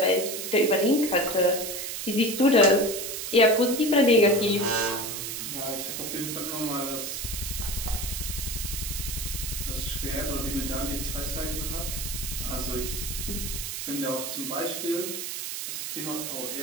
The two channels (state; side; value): noise; right; hiss, 5 dB below the sound